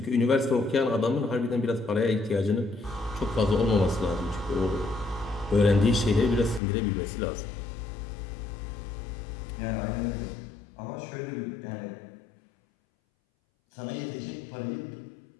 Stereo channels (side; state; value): right; drops out; at 6.6 s